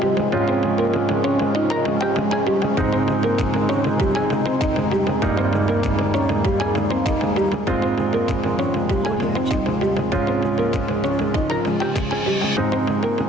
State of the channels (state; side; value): normal; both; correlation 0.64